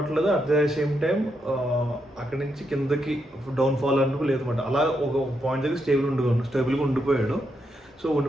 అట్ ద సేమ్ టైం అక్కడి నుంచి కిందకి డౌన్ఫాల్ అంటూ లేదన్నమాట. అలా ఒక పాయింట్ దగ్గర స్టేబుల్గా ఉండిపోయాడు. సో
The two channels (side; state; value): both; normal; correlation 0.81